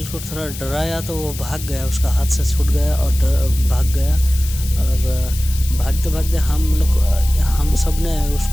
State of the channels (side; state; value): left; noise; hiss, 12 dB below the sound